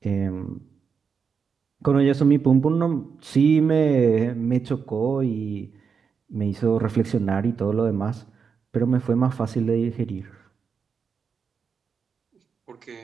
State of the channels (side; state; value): left; quieter; 6.0 dB